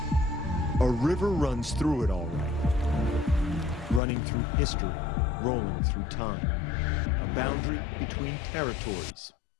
A river runs through it all right. Running through history, rolling through time. A boundary between territories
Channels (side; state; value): right; drops out; at 4.0 s